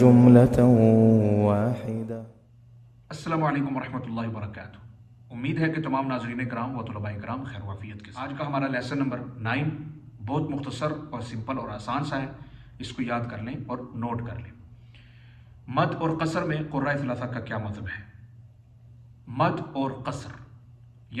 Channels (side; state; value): both; identical; correlation 1.00